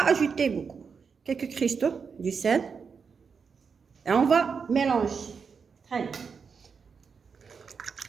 ajouter beaucoup. Quelques cristaux du sel. Et on va mélanger. Très bien.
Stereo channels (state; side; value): quieter; left; 5.8 dB